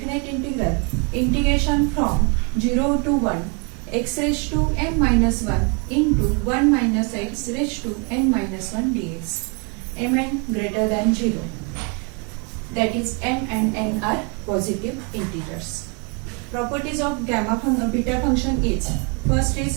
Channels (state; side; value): quieter; left; 35.0 dB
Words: integral integration from 0 to 1 x raised to n minus 1 into 1 minus x raised to n minus 1 dx. Mn greater than 0. That is m and n are positive integers. Properties of beta function is, first